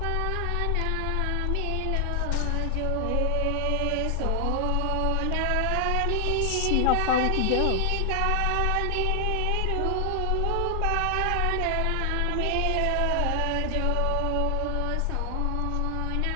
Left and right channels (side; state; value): both; different; correlation 0.00